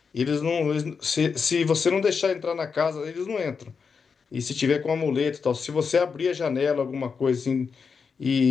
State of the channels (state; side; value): quieter; right; 5.6 dB